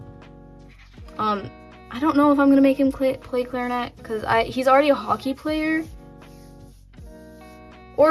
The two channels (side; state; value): both; identical; correlation 1.00